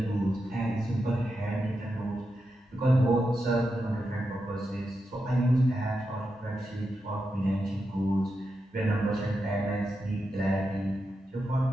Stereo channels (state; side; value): normal; both; correlation 0.87